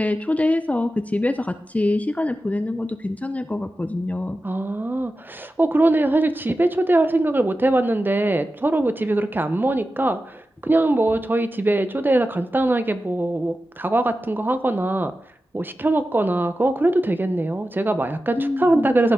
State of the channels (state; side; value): normal; both; correlation 0.93